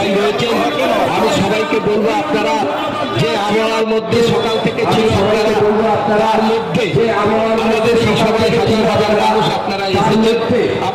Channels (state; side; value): identical; both; correlation 1.00